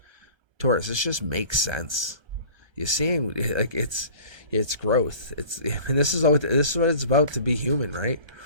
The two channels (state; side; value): late; left; 1.3 ms